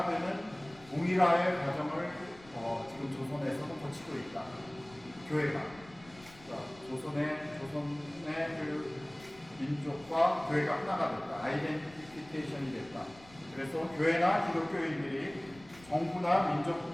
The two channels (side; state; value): left; noise; rumble, 23 dB below the sound